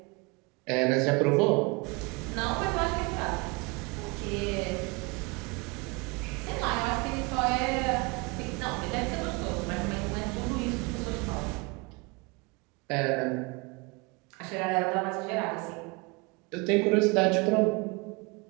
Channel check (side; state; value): left; quieter; 27.7 dB